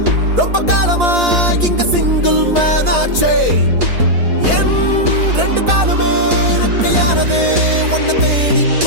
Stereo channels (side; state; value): left; late; 4.2 ms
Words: ரொம்ப காலமா இங்க சிங்கிள் மேன் ஆச்சே